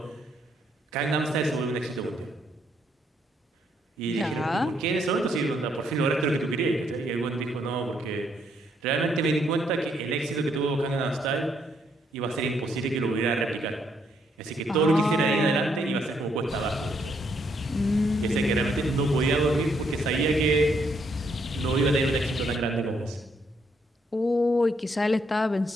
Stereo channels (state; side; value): normal; both; correlation 0.73